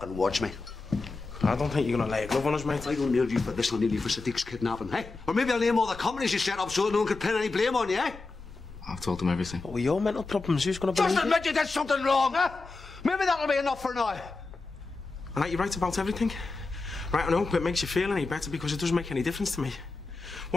watch me. I don't think you're gonna lay a glove on us, mate. I don't nail you for this, I'll nail you for Sadiq's kidnapping, eh? Or maybe I'll name all the companies you set up so no one could pin any blame on you, eh? I've told him everything. What were your mental problems? Who's going to believe Just admit you did something wrong, huh? Maybe that'll be enough for now. All right, you're right about everything. Right, I hope it makes you feel any better because it doesn't make any difference to me.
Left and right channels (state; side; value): quieter; right; 3.7 dB